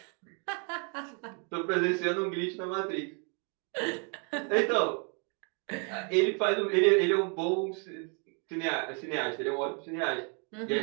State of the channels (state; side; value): quieter; left; 37.9 dB